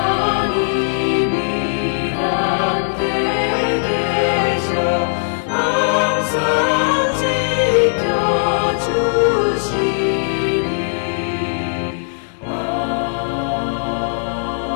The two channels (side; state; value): right; silent; digital silence